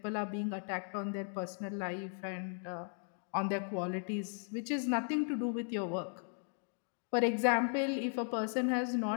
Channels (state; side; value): silent; right; 53 dB below the other